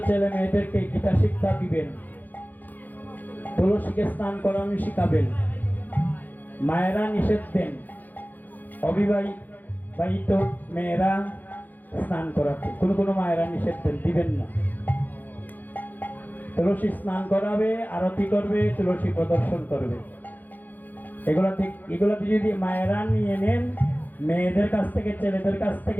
ছেলে মেয়েদেরকে গীতা শিক্ষা দিবেন, তুলসীকে স্নান করানো শিখাবেন, মায়েরা নিষেধ দেন অবিবাহিত মেয়েরা স্নান করাতে, কোনো মায়েরা নিষেধ দেন, দিবেন না। তুলসী স্নান করাবে, আরতি করবে, তুলসী প্রদর্শন করবে। এগুলাতে যদি মায়েরা নিয়ে নেন, মেয়েদের কাছ থেকে ছেলেদের কাছ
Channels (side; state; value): right; late; 0.084 ms